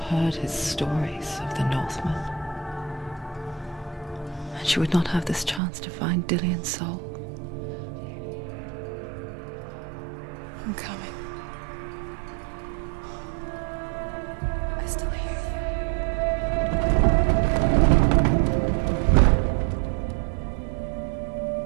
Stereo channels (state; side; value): drops out; left; at 5.6 s